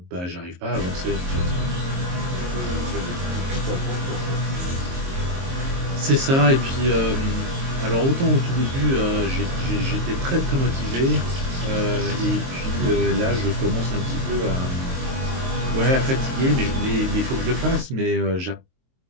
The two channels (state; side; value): late; left; 22 ms